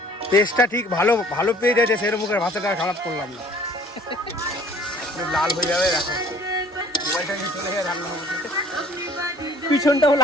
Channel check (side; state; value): both; normal; correlation 0.53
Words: টেস্টটা ঠিক ভালো ভালো পেয়ে যাচ্ছে, সেরকম মুখের ভাষাটা খারাপ করলাম না। লাল হয়ে যাবে, দেখো মোবাইলটা নিয়ে চলে গিয়ে রান্না করতে। পিছনটাও